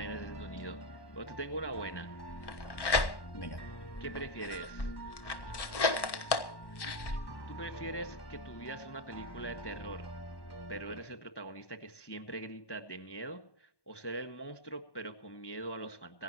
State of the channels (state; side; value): late; right; 1.1 ms